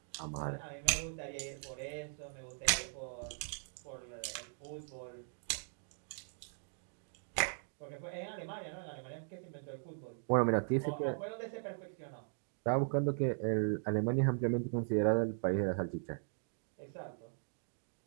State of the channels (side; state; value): left; silent; digital silence